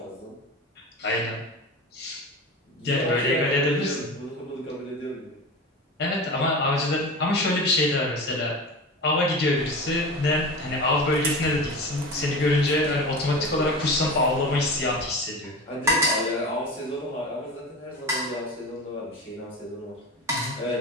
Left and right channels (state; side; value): normal; both; correlation 0.29